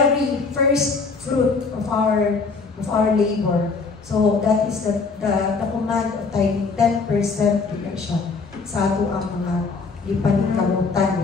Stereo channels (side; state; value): right; quieter; 4.5 dB